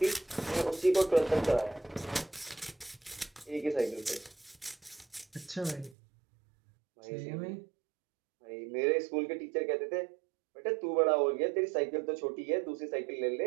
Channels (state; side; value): drops out; left; at 6.0 s